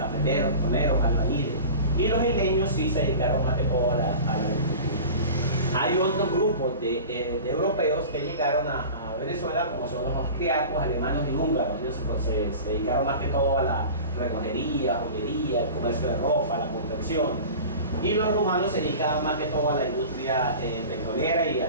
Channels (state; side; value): inverted; both; correlation -0.36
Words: toneros, albañiles. Y los isleños sí se dedicaron más que todo a la agricultura. Hay otros grupos de europeos que llegaron a Venezuela, como son los austriacos, alemanes y húngaros. Ellos se dedicaron más que todo a la relojería, joyería, el comercio de ropa, la confección. Y los rumanos se dedicaban más que todo a la industria petrolera y